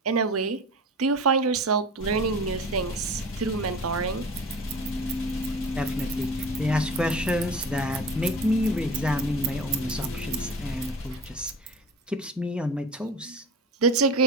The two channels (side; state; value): both; normal; correlation 0.36